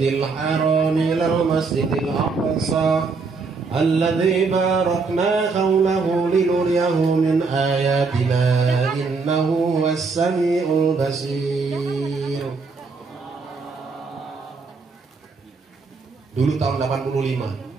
haram ilal masjidil aqsa alladzi barakna hawlahu linuriyahu min ayatina innahu huwas samiul basir. Dulu tahun 85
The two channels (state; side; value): quieter; left; 4.4 dB